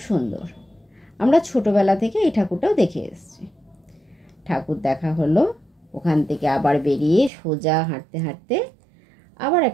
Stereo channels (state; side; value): drops out; left; at 7.3 s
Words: সুন্দর, আমরা ছোটোবেলা থেকে এই ঠাকুরটাও দেখে এসেছি। ঠাকুর দেখা হলো, ওখান থেকে আবার বেরিয়ে সোজা হাঁটতে হাঁটতে আবার